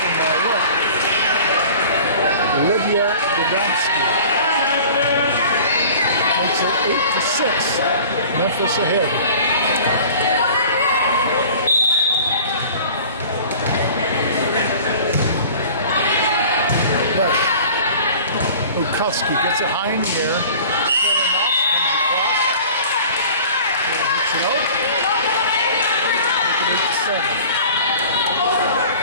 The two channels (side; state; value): both; inverted; correlation -0.43